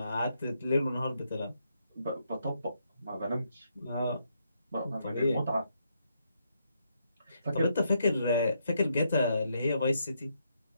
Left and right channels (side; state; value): both; inverted; correlation -0.77